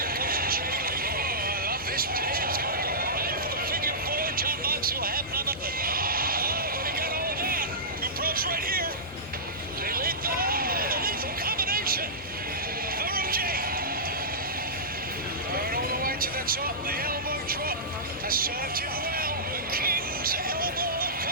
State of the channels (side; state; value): both; normal; correlation -0.17